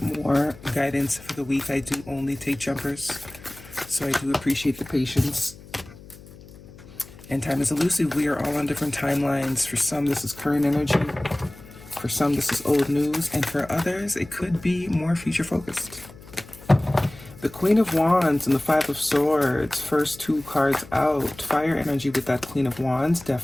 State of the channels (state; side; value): noise; left; hum, 19 dB below the sound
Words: more guidance for the week. I do only take jumpers, so I do appreciate the patience. And time is elusive. We are all on different timelines. For some, this is current energy. For some, this is old news. And for others, it could be more future focused. The Queen of Wands and the Five of Swords, first two cards out. Fire energy with that Queen of Wands